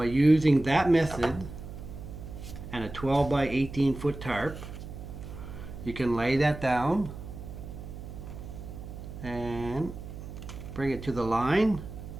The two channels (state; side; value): noise; right; hum, 11 dB below the sound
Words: using that method and a 12 by 18 foot tarp, you can lay that down and bring it to the line,